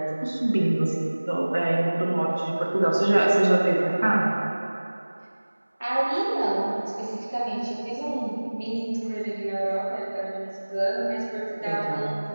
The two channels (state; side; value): inverted; both; correlation -1.00